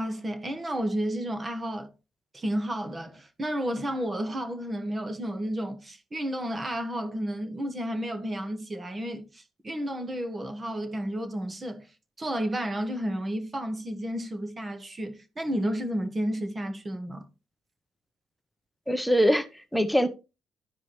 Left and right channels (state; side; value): normal; both; correlation 0.91